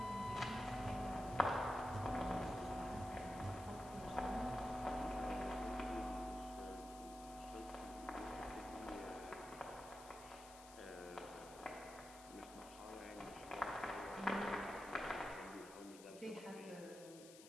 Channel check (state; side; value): noise; left; hiss, 16 dB below the sound